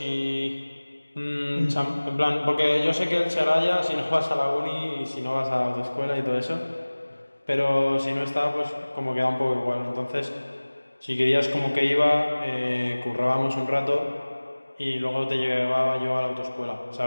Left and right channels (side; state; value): both; inverted; correlation -1.00